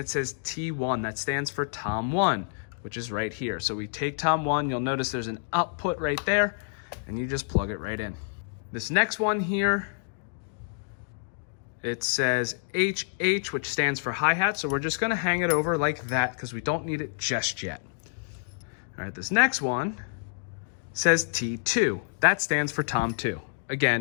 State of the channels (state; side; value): silent; right; digital silence